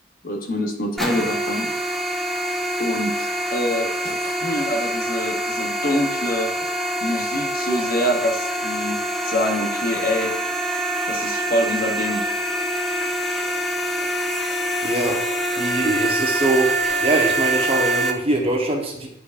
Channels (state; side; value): normal; both; correlation 0.55